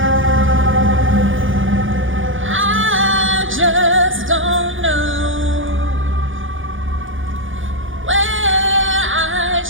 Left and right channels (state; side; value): late; left; 0.57 ms